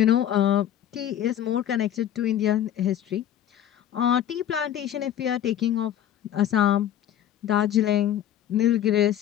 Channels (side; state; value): right; quieter; 10.9 dB